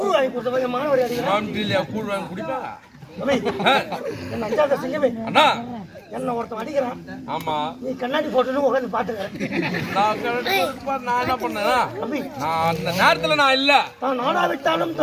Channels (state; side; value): identical; both; correlation 1.00